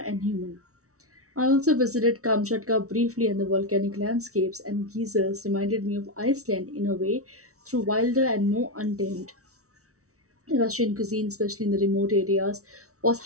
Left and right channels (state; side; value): late; left; 0.64 ms